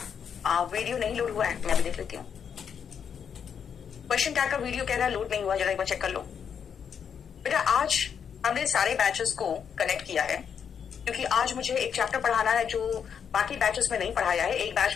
वीडियो नहीं लोड हुआ है, मैं भी देख लेती हूँ। क्वेश्चन टैग का वीडियो कह रहा है लोड नहीं हुआ, जरा एक बार चेक कर लो बेटा। आज हमने सारे बैचेस को कनेक्ट किया है क्योंकि आज मुझे एक चैप्टर पढ़ाना है जो बाकी बैचेस में नहीं पढ़ाया है। एक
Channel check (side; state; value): right; quieter; 7.4 dB